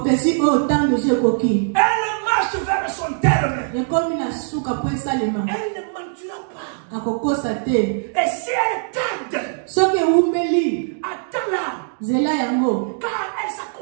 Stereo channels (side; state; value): left; silent; digital silence